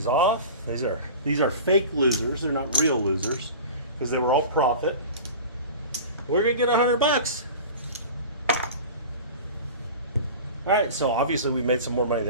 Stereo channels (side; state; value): both; inverted; correlation -0.36